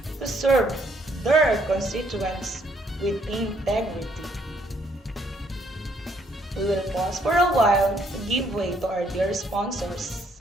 to serve their constituents with integrity. We will pause for a while to give way to our dear sponsors.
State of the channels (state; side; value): normal; both; correlation 0.69